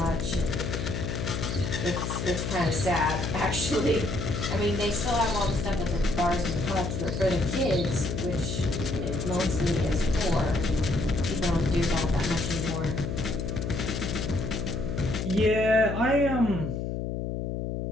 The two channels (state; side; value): noise; left; hum, 3 dB below the sound